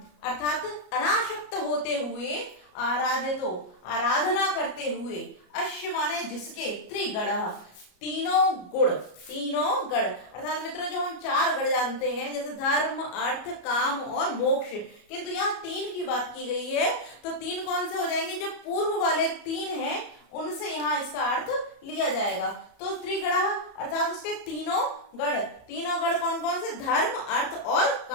अर्थात अनासक्त होते हुए, आराधितो, आराधना करते हुए, अश्य माने जिसके, त्रिगण, तीनों गुण, तीनों गण, अर्थात मित्रों जो हम 4 गण जानते हैं, जैसे धर्म, अर्थ, काम और मोक्ष, किंतु यहाँ 3 की बात की गई है, तो 3 कौन से हो जाएंगे? जो पूर्व वाले 3 हैं उनसे यहाँ इसका अर्थ लिया जाएगा। तो त्रिगण अर्थात उसके तीनों गण कौन कौन से? धर्म, अर्थ और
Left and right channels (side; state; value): right; late; 33 ms